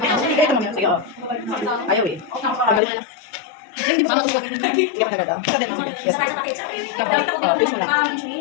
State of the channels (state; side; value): drops out; right; at 2.8 s